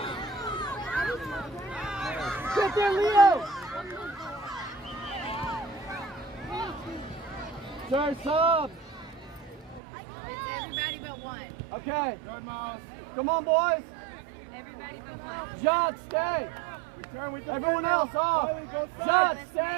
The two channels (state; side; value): drops out; left; at 9.8 s